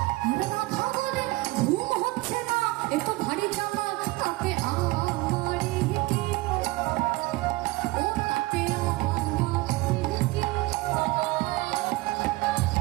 আর রাধা বলে ঘুম হচ্ছে না, এ তো ভারী জ্বালা, তাতে আমারই কি, ও তাতে আমারই কি।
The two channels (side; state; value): left; quieter; 21.1 dB